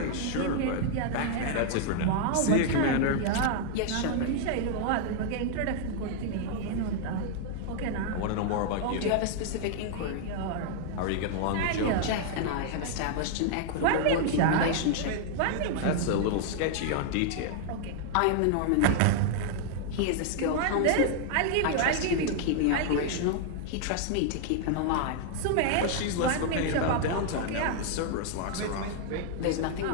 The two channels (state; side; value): different; both; correlation 0.00